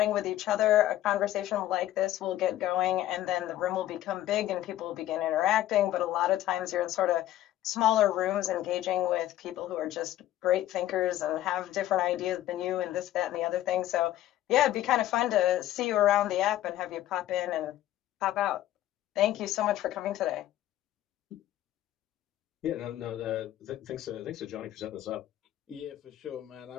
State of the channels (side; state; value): right; quieter; 13.7 dB